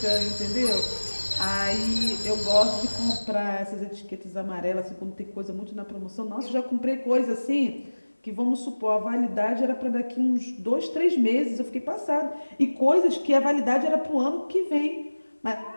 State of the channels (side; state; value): both; inverted; correlation -1.00